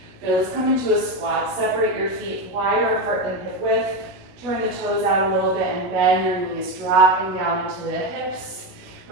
Okay, let's come into a squat. Separate your feet wider apart than hip width. Turn the toes out a little bit and bend your knees, dropping down into the hips.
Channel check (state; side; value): late; left; 16 ms